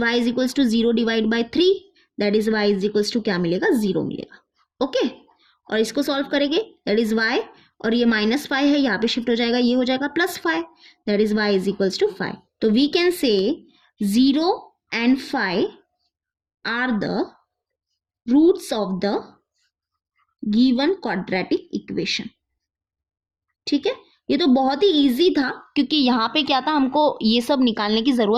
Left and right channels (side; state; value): both; identical; correlation 1.00